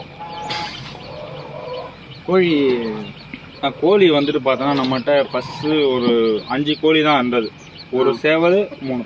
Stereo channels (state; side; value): identical; both; correlation 1.00